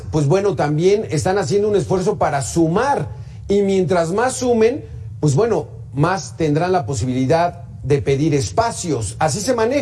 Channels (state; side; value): identical; both; correlation 1.00